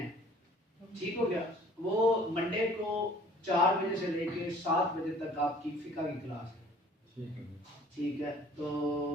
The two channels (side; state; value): both; normal; correlation 0.52